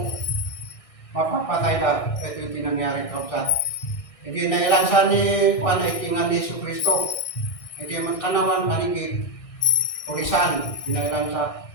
mapapatay na. Ito yung tinangyari kapsat. Hindi nailansa ni Juan ay tingan ni Jesus Cristo. Hindi magkanawan manigid, pulisan, nailansa.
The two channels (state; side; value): late; right; 1.6 ms